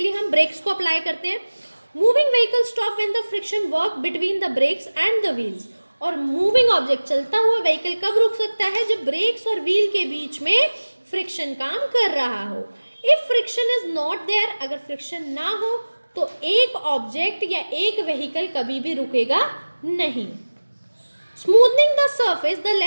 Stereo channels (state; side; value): inverted; both; correlation -1.00